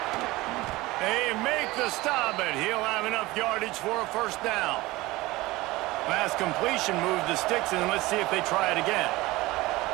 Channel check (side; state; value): left; quieter; 19.9 dB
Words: They make the stop, but he'll have enough yardage for a first down. Last completion moved the sticks, and let's see if they try it again.